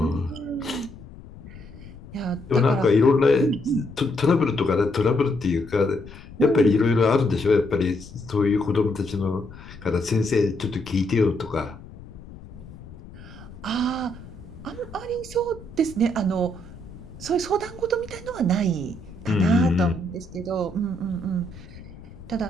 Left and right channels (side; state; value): left; noise; rumble, 17 dB below the sound